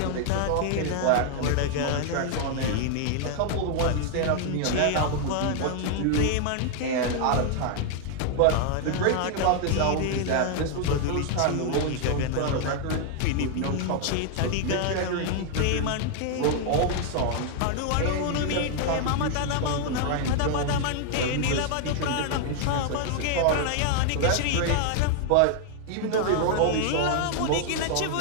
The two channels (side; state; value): both; different; correlation 0.00